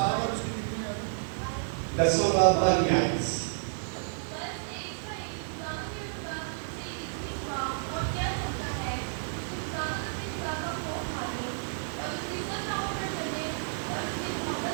10वां बाब बाहर में आए।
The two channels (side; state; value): left; silent; digital silence